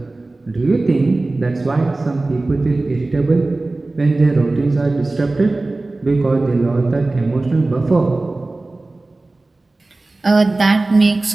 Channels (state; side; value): quieter; left; 3.1 dB